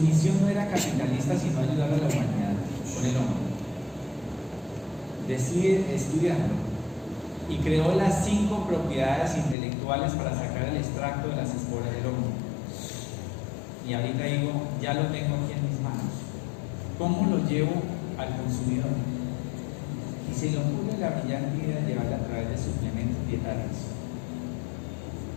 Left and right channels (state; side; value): drops out; right; at 9.6 s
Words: no era capitalista sino ayudar a la humanidad con el hongo, decide estudiarlo y creó las 5 propiedades intelectuales para sacar el extracto de las esporas del hongo. Y ahorita digo, ya lo tengo aquí en mis manos. ¿Cómo lo llevo al consumidor? Y se le ocurre la brillante idea de llevarla a través de suplementos dietarios.